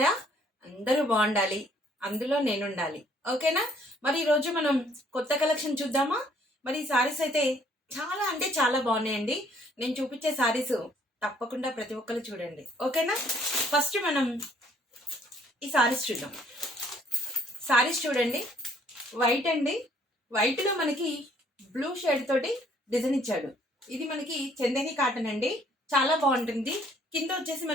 అందరూ బాగుండాలి, అందులో నేను ఉండాలి. ఓకేనా? మరి ఈరోజు మనం కొత్త కలెక్షన్ చూద్దామా? మరి ఈ సారీస్ అయితే చాలా అంటే చాలా బాగున్నాయండి. నేను చూపించే సారీస్ తప్పకుండా ప్రతి ఒక్కరు చూడండి. ఓకేనా? ఫస్ట్ మనం ఈ సారీస్ చూద్దాం. సారీస్ చూడండి, వైట్ అండి. వైట్లో మనకి బ్లూ షేడ్ తోటి డిజైన్ ఇచ్చాడు. ఇది మనకి చందేరి కాటన్ అండి, చాలా బాగుంటుంది. కింద వచ్చేసి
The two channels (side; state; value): both; normal; correlation 0.63